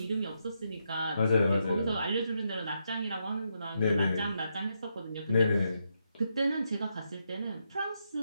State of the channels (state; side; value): inverted; both; correlation -0.81